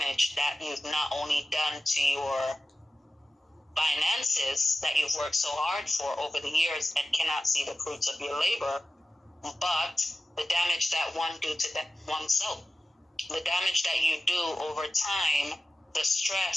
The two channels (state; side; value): normal; both; correlation 0.94